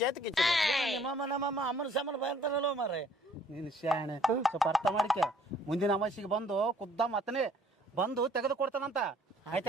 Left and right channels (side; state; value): both; normal; correlation 0.59